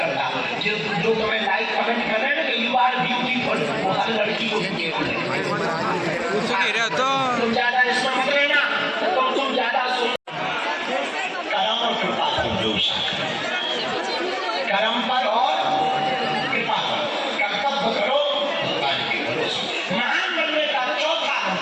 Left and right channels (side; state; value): both; identical; correlation 1.00